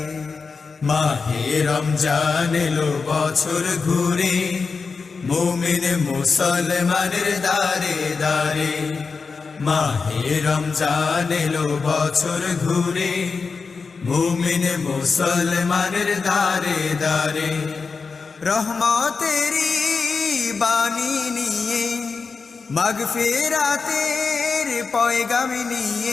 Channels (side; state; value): right; quieter; 4.8 dB